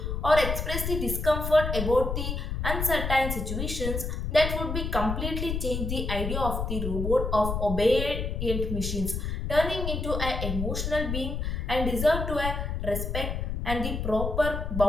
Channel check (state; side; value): noise; left; rumble, 3 dB below the sound